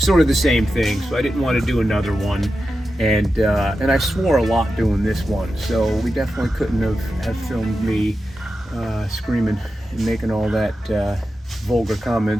of the same thing, so I didn't want to do another one. And I swore a lot doing this one, so we definitely couldn't have filmed me screaming and making all that vulgar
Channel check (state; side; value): normal; both; correlation 0.91